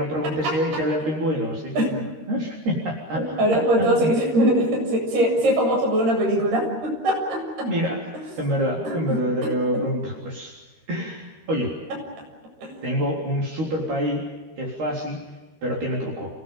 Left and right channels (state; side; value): late; left; 13 ms